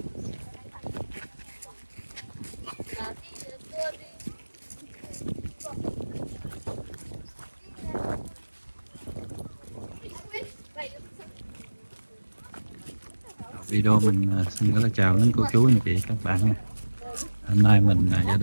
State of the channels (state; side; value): inverted; both; correlation -1.00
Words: Video mình xin gửi lời chào đến cô chú anh chị các bạn nha. Hôm nay mình gia